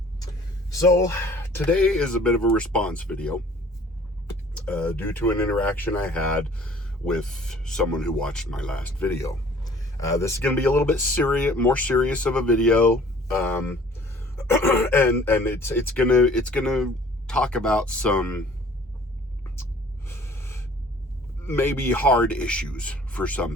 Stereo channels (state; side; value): normal; both; correlation 0.53